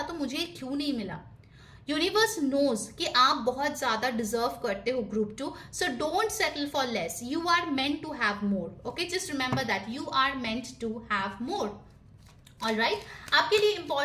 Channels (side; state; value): both; identical; correlation 1.00